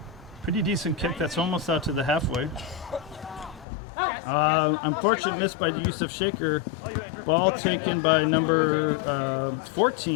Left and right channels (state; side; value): drops out; right; at 3.7 s